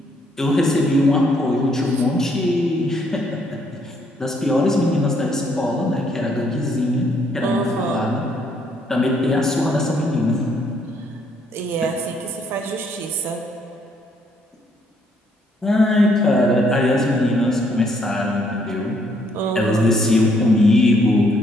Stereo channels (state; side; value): normal; both; correlation 0.69